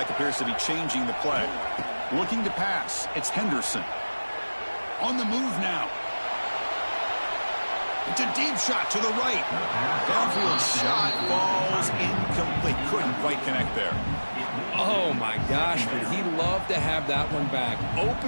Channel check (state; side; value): inverted; both; correlation -1.00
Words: appears to be changing the play. Looking to pass. It's Henderson. On the move now. It's a deep shot to the right. Downfield shot falls incomplete. Couldn't quite connect there. Oh, my gosh, would he love to have that one back.